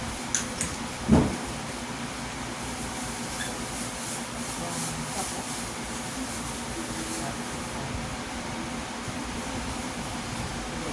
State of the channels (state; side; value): identical; both; correlation 1.00